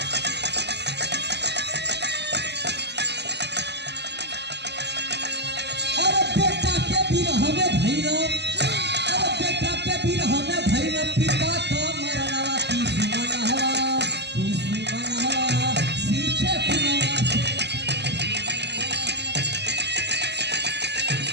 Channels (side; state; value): left; late; 0.50 ms